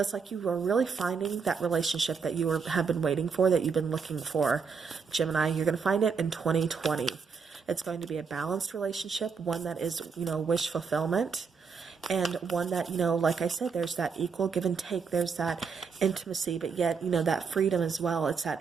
it's like you are really finding that relationship that you have been waiting for, that you've been looking for. Gemini, you're going to find it in 2020. It's going to be a balanced relationship, one that is, wish fulfillment, and one that, like I said, there's that equal give and take. There's that intimacy, but yet, that freedom as well. It's that,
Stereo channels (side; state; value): left; quieter; 5.6 dB